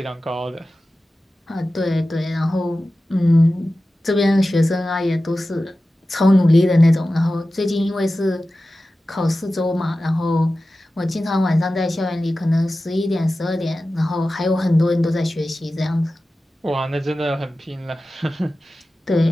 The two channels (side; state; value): both; normal; correlation 0.95